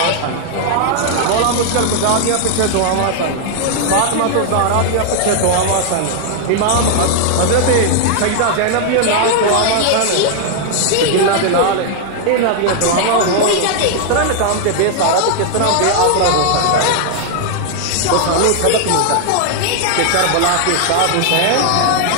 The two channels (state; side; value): different; both; correlation 0.00